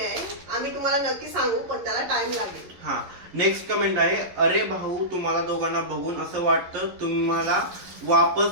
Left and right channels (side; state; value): left; late; 11 ms